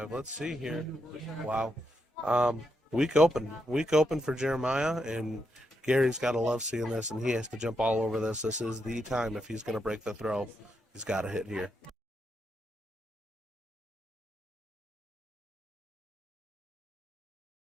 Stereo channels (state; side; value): normal; both; correlation 0.82